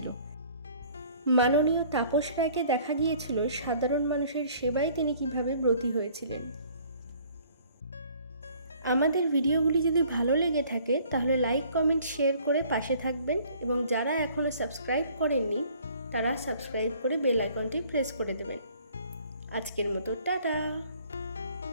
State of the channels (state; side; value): inverted; both; correlation -0.56